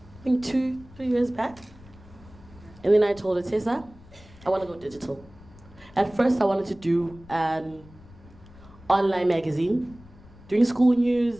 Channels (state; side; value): noise; left; rumble, 22 dB below the sound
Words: I think 2-3 years back. And then I told her, Tessa, I want to go digital. At first I wanted to do an online magazine, doing school